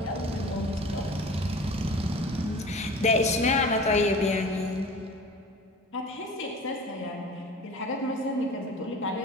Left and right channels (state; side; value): normal; both; correlation 0.39